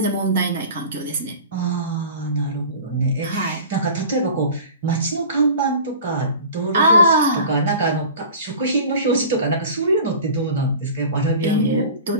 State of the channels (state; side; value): inverted; both; correlation -0.39